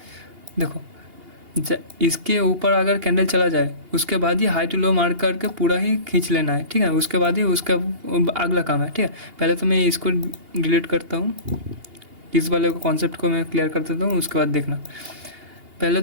देखो इसके ऊपर अगर कैंडल चला जाए उसके बाद ही हाई टू लो मार्क करके पूरा ही खींच लेना है। ठीक है, उसके बाद ही उसका अगला काम है। ठीक है, पहले तो मैं इसको डिलीट करता हूँ, इस वाले को कॉन्सेप्ट को मैं क्लियर कर देता हूँ, उसके बाद देखना। पहले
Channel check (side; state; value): left; late; 2.8 ms